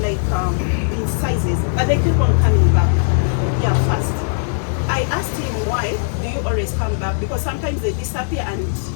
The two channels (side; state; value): right; silent; digital silence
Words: in sizes, but they keep on coming back. Yeah, fast. I asked him why do you always come back? Because sometimes they disappear and